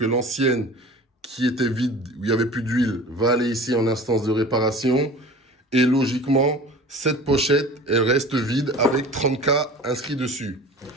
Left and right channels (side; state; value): both; normal; correlation 0.40